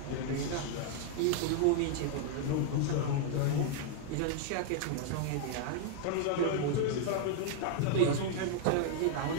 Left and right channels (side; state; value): both; different; correlation 0.00